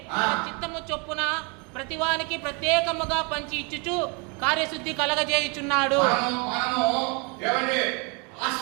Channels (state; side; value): quieter; left; 32.3 dB